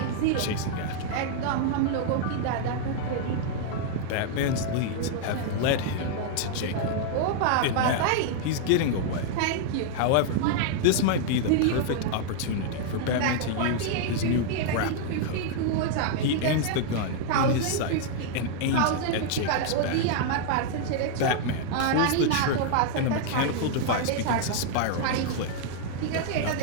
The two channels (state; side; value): different; both; correlation -0.01